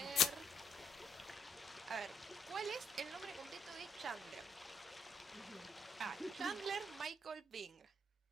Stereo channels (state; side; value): normal; both; correlation 0.72